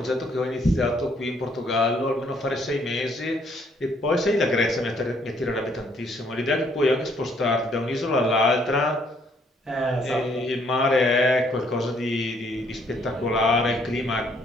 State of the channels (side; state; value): both; normal; correlation 0.67